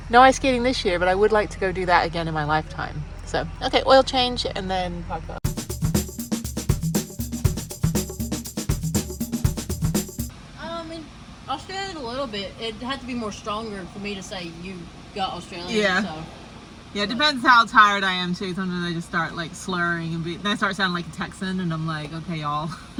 No ice skating this year, but I would like to go do that again in my lifetime. So, okay, oil change and then park up. In Australia a little bit. It had to be more stronger for me to say you got Australian. Yeah. So. Yeah, it depends how tired I am too. Sometimes I just start like slurring and then I start sounding like a Texan and I'm like, okay, y'all.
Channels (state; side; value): identical; both; correlation 1.00